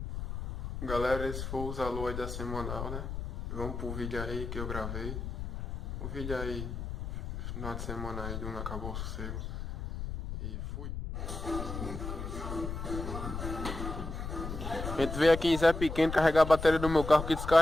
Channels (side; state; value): left; noise; rumble, 6 dB below the sound